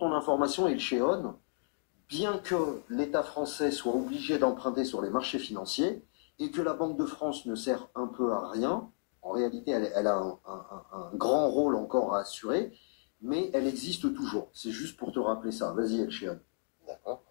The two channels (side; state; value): right; silent; digital silence